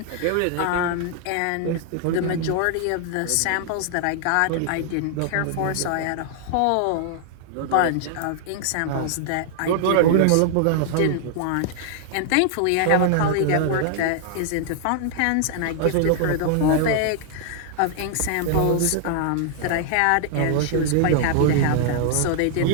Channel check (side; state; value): both; different; correlation -0.01